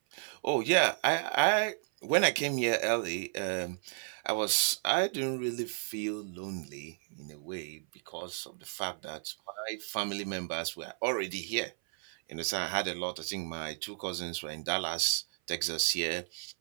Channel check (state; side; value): silent; left; 56 dB below the other